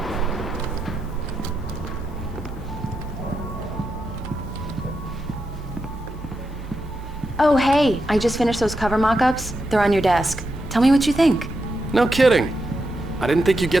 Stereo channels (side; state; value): both; normal; correlation 0.86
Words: Oh, hey, I just finished those cover mock-ups. They're on your desk. Tell me what you think. No kidding. I didn't think you'd